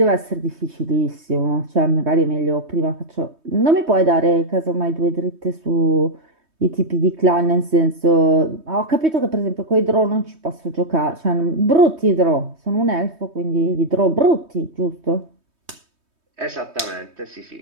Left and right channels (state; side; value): late; left; 3.2 ms